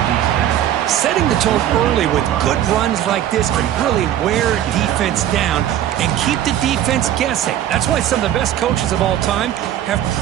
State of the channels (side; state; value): left; quieter; 11.5 dB